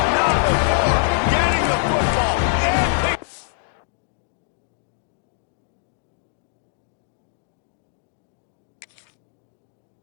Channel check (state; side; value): silent; right; digital silence